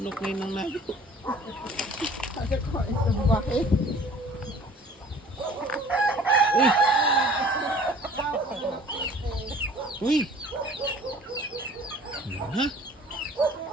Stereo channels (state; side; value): normal; both; correlation 0.49